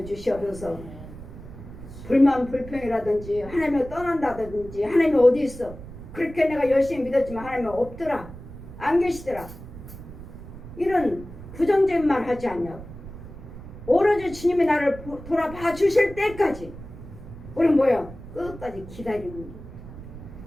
주시옵소서. 불만 불평이라든지 하나님을 떠난다든지 하나님이 어디 있어? 그렇게 내가 열심히 믿었지만 하나님은 없더라. 안 계시더라. 이런 부정적인 말 하지 않냐고. 오로지 주님이 나를 돌아봐 주실 때까지 우리는 뭐야? 끝까지 기다리는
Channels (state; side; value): noise; right; rumble, 14 dB below the sound